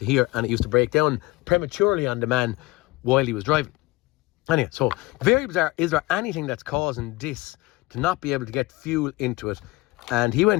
here, and it used to break down prematurely on the man while he was driving. Anyway, so very bizarre. Is there anything that's causing this to not be able to get fuel into it? And he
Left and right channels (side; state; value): right; quieter; 21.3 dB